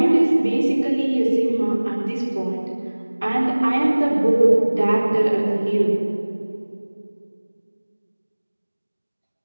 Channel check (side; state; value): both; inverted; correlation -1.00